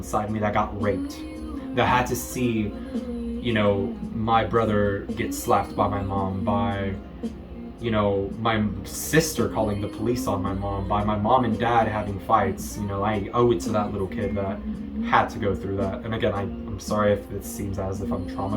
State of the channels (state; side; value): identical; both; correlation 1.00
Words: me that got raped, that had to see, you know, my brother get slapped by my mom, by, you know, my sister calling the police on my mom, by my mom and dad having fights. You know, I owe it to that little kid that had to go through that. And again, I'm sorry if it seems as if I'm